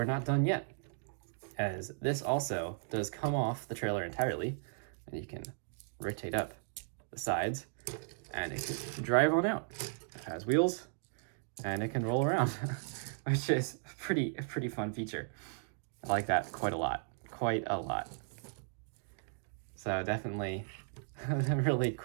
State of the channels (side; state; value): left; silent; digital silence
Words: not done yet, as this also does come off the trailer entirely, and you can rotate up the sides, and it can drive on out. It has wheels, and it can roll around, which is a pretty fun feature. I like that quite a lot. So definitely really